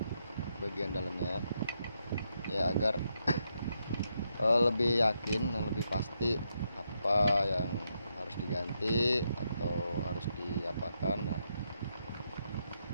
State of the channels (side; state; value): both; inverted; correlation -0.80